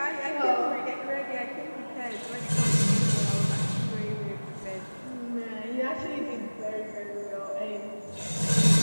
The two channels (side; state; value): both; inverted; correlation -1.00